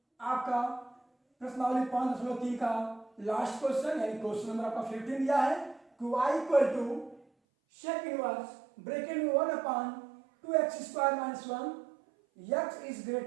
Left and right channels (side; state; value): left; drops out; at 7.2 s